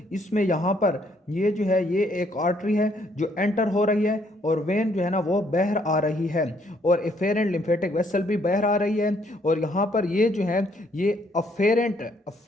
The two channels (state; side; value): normal; both; correlation 0.68